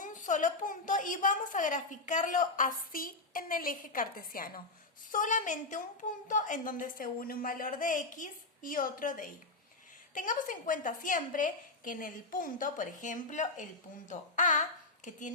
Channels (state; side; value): quieter; right; 3.3 dB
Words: solo punto y vamos a graficarlo así en el eje cartesiano. Solamente un punto en donde se une un valor de x y otro de y. Tengamos en cuenta siempre que en el punto, por ejemplo, el punto A, que